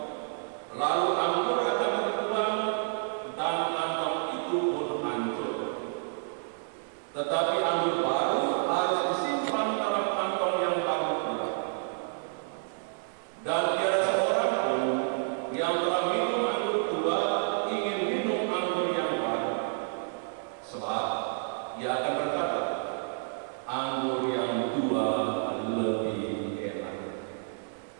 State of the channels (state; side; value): silent; left; 58 dB below the other